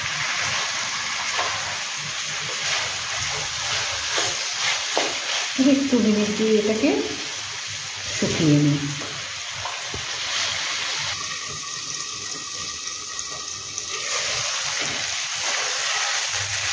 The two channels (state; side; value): identical; both; correlation 1.00